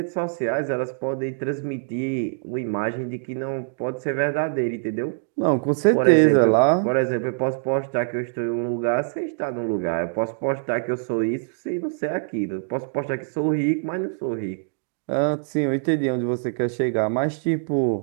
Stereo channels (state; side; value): silent; left; digital silence